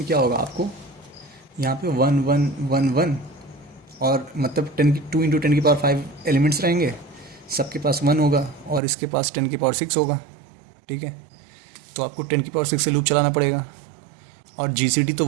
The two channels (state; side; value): drops out; left; at 8.8 s